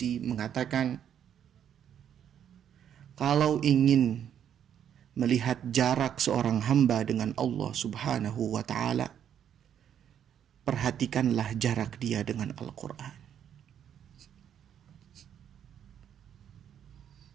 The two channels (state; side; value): quieter; left; 9.3 dB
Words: mengatakan, kalau ingin melihat jarak seorang hamba dengan Allah Subhanahu wa Ta'ala, perhatikanlah jarak dia dengan Al-Quran.